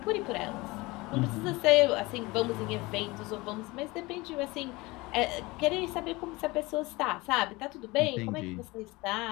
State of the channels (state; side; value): quieter; right; 22.6 dB